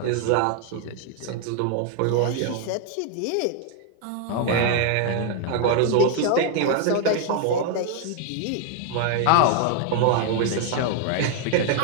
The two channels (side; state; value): both; different; correlation 0.00